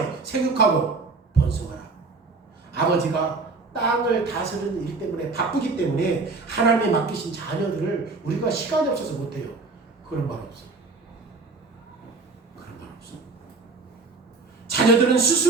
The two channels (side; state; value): left; quieter; 4.0 dB